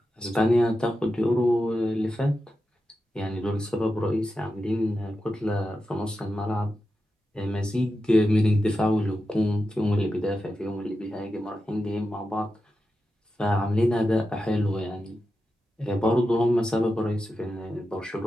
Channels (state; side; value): normal; both; correlation 0.90